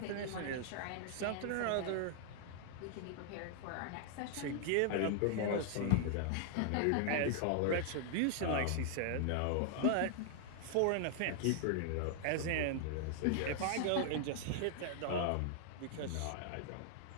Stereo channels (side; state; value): both; different; correlation 0.00